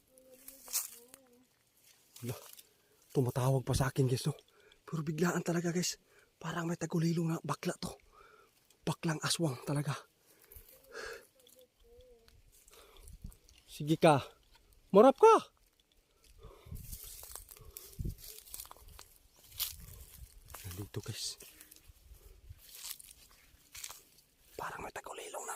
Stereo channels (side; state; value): both; identical; correlation 1.00